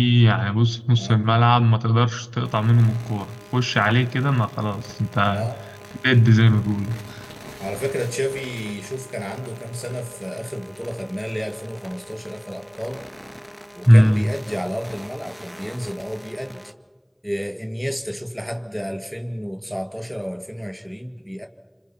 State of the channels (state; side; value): identical; both; correlation 1.00